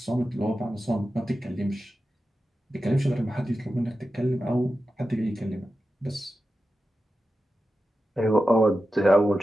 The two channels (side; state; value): both; normal; correlation 0.92